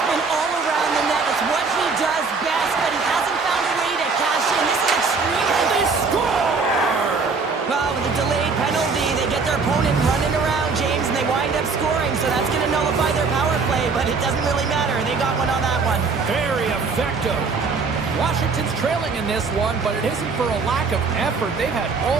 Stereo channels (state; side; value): quieter; left; 4.6 dB